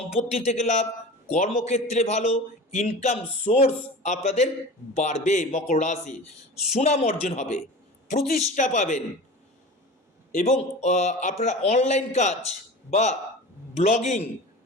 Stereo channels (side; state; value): both; normal; correlation 0.34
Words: থেকে লাভ, কর্মক্ষেত্রে ভালো, ইনকাম সোর্স আপনাদের বাড়বে। মকর রাশি সুনাম অর্জন হবে, প্রতিষ্ঠা পাবেন, এবং আপনারা অনলাইন কাজ বা ব্লগিং,